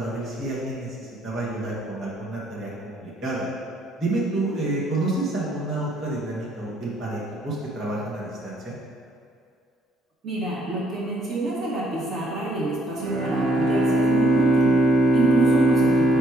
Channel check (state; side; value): normal; both; correlation 0.68